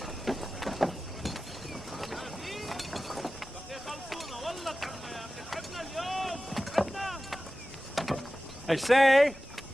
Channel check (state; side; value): normal; both; correlation 0.96